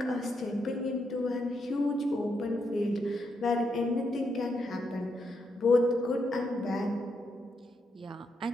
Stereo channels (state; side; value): normal; both; correlation 0.80